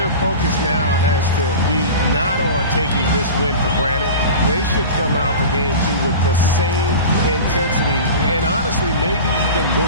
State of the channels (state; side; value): inverted; both; correlation -0.33